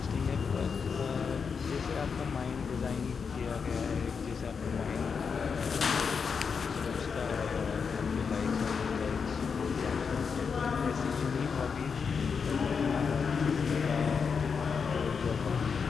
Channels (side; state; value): right; quieter; 5.9 dB